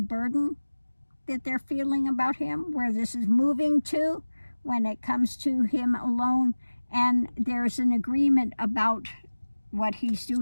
that they're feeling about him, where this is moving to when it comes to him alone. And there's an agreement about what he's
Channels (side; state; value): both; inverted; correlation -1.00